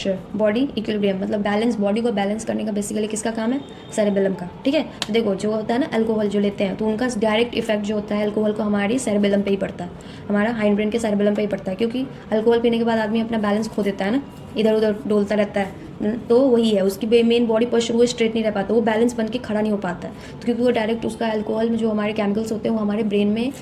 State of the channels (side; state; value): both; identical; correlation 1.00